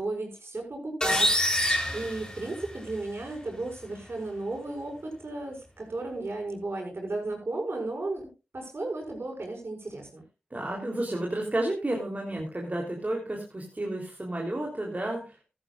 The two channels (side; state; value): both; normal; correlation 0.76